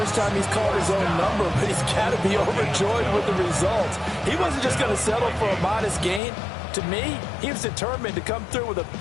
time he's called his own number, but he's got to be overjoyed with the results. He wasn't just going to settle for a modest gain. To me, he was determined to come through with a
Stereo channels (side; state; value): right; drops out; at 6.2 s